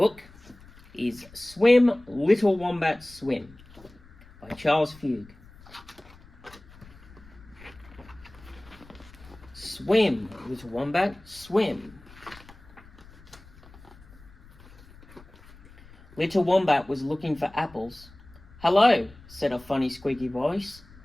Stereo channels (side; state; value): left; noise; rumble, 23 dB below the sound